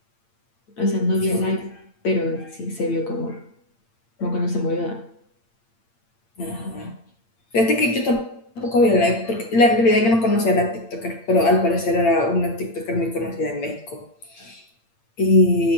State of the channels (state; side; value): late; right; 8.8 ms